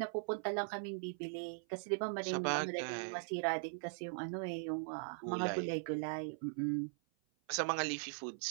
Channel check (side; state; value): left; silent; 51 dB below the other